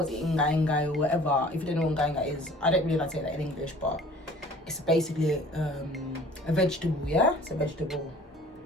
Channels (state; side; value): normal; both; correlation 0.49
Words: inga or whatever. If you don't know what inga is, I don't really like to say that in English, but it's basically a vegetable, yeah? It's a vegetable.